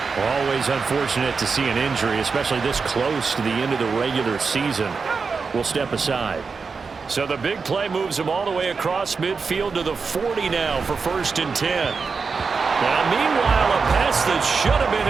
Always unfortunate to see an injury, especially this close to the end of the regular season. We'll step aside. So the big play moves him all the way across midfield to the 40 now for 1st and 10. Now, meanwhile, a pass that should have been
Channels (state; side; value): quieter; left; 5.0 dB